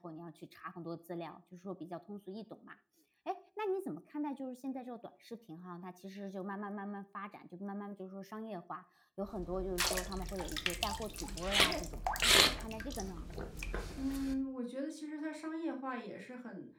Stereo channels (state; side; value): identical; both; correlation 1.00